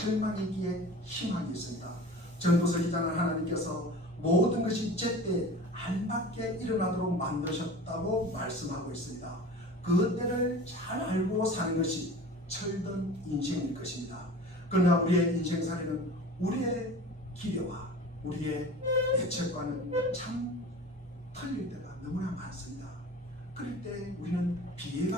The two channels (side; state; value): both; normal; correlation 0.38